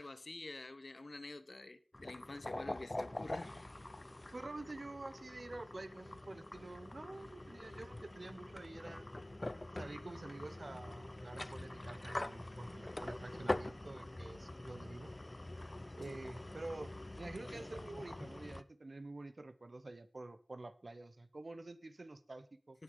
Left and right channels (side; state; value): both; normal; correlation 0.98